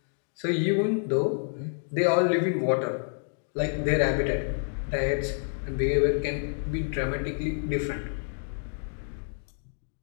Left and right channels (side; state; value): right; silent; digital silence